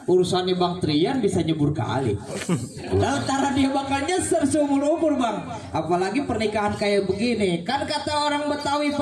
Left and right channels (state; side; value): identical; both; correlation 1.00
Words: urusannya Bang Trian bisa nyebur kali. Lantaran dia bakal nyeser seumur umur Bang. Apalagi pernikahan kayak begini. Kan kata orang Betawi